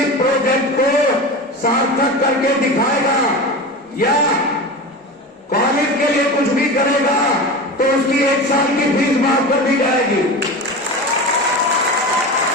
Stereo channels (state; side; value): normal; both; correlation 0.28